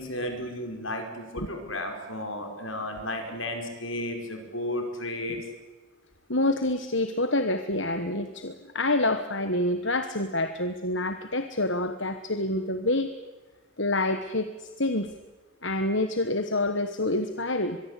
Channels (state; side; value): normal; both; correlation -0.11